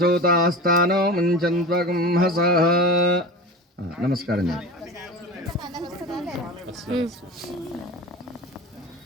ముంచంత్వకం హసః. నమస్కారం చేయండి.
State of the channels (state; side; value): normal; both; correlation 0.31